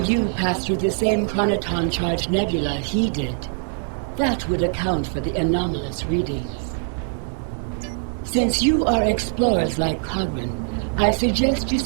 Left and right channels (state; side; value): silent; left; 64 dB below the other